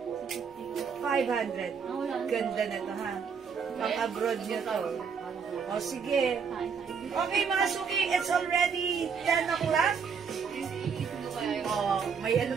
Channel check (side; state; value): left; quieter; 6.3 dB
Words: 500. Ganda na to ha. Pang abroad nyo to. O sige. Okay mga suki, it's already 10 o'clock. O Oh, may